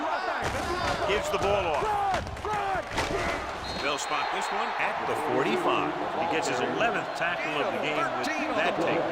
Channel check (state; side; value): identical; both; correlation 1.00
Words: our thing. Gives the ball off. Run. They'll spot this one at the 45. He gets his 11th tackle of the game with that